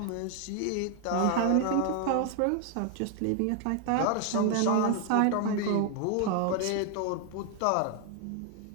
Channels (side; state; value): both; different; correlation 0.00